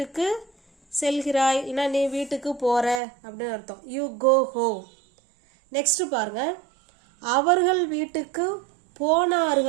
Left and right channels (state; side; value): drops out; left; at 3.0 s